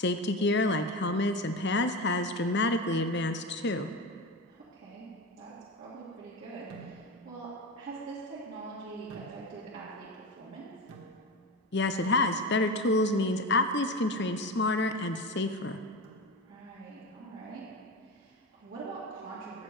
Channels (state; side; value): normal; both; correlation 0.23